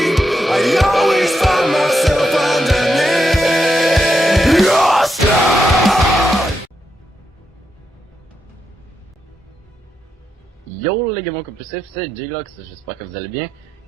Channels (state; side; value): normal; both; correlation 0.83